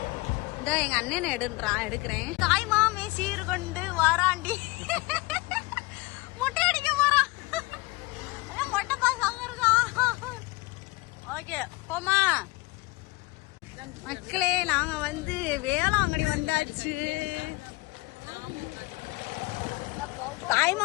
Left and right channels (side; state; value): right; quieter; 23.2 dB